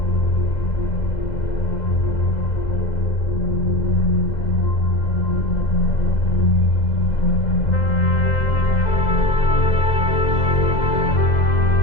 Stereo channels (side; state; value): right; late; 2.0 ms